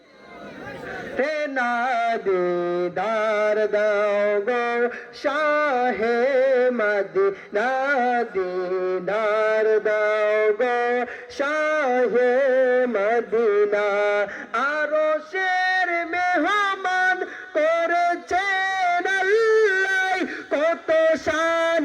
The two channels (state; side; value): identical; both; correlation 1.00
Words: হে না। দিদার দাও গো শাহে মদিনা, দিদার দাও গো শাহে মদিনা। আরশের মেহমান করেছেন আল্লাহ, কত শান